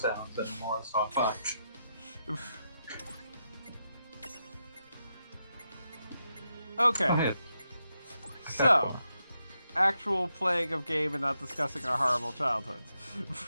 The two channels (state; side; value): inverted; both; correlation -0.84